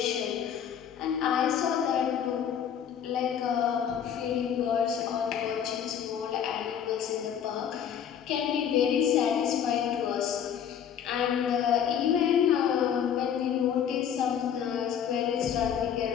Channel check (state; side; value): quieter; right; 8.7 dB